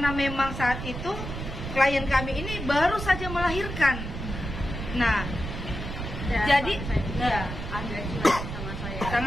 memang saat itu klien kami ini baru saja melahirkan. Nah, jadi ya, agak cuek sama saya.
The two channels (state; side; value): noise; right; rumble, 6 dB below the sound